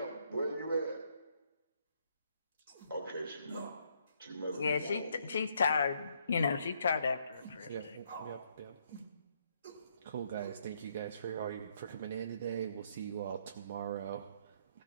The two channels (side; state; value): both; inverted; correlation -0.71